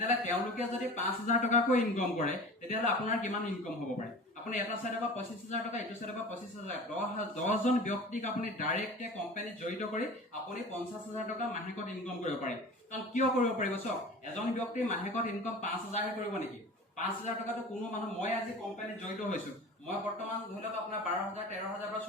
তেওঁলোকে যদি 5000 টকাকৈ ইনকাম কৰে তেতিয়ালে আপোনাৰ কিমান ইনকাম হ'ব পাৰে আপুনি এটা সাইডৰ পৰা 25000 টকা ইটো সাইডৰ পৰা 25000 10 জন ব্যক্তিক আপুনি ডাইৰেক্টলি কোম্পানীত জড়িত কৰি আপুনি 50000 টকা মাহেকত ইনকাম কৰিব পাৰে কাৰণ কিয় কৰিব পাৰিব চক এজন ব্যক্তি মাহেকত ইনকাম 5000 হে কৰিব নেকি 5000 টকাটো কোনো মানুহ মই আজি কোম্পানীত জড়িত হৈছো মই বৰ্তমান ধৰি লওক আপোনাৰ 12000 13000 বা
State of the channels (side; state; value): both; normal; correlation 0.38